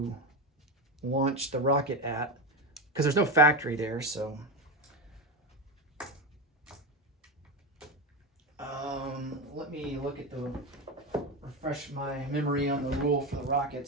launch the rocket at, because there's no factory there, so... let me look at refresh my memory on the rule for the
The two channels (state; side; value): normal; both; correlation 0.16